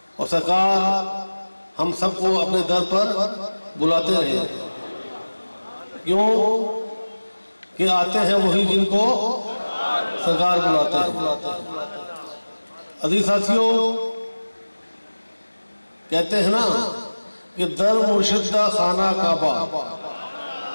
और सरकार हम सबको अपने दर पर बुलाते रहे। क्यों कि आते हैं वही जिनको सरकार बुलाते हैं। अज़ीज़ साथियों, कहते हैं ना कि दर मुर्शिद दा खाना काबा,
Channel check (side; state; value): both; inverted; correlation -1.00